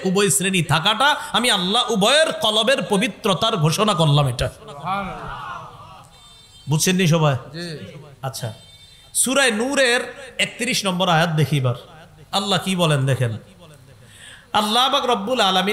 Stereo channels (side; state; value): both; identical; correlation 1.00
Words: উভয় শ্রেণী থাকাটা আমি আল্লাহ উভয়ের কলবের পবিত্রতার ঘোষণা করলাম। এটা বুঝছেন নি সবাই? আচ্ছা, সূরা নূরের 31 নম্বর আয়াত দেখি এবার আল্লাহ কি বলেন দেখেন। আল্লাহ পাক রব্বুল